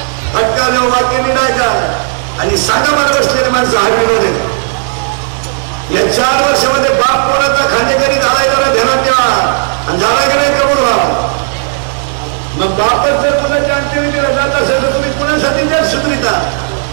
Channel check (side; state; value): left; silent; digital silence